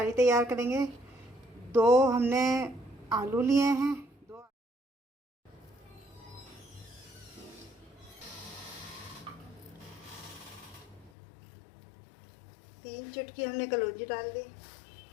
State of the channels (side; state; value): right; drops out; at 11.1 s